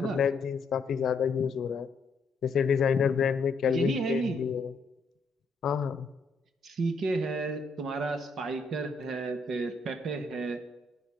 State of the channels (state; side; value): quieter; right; 3.4 dB